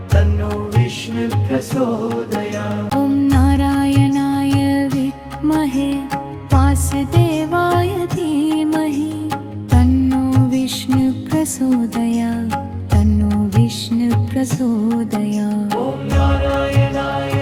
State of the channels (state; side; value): identical; both; correlation 1.00